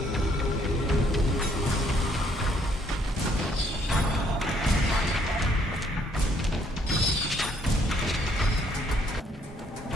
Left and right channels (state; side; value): normal; both; correlation 0.67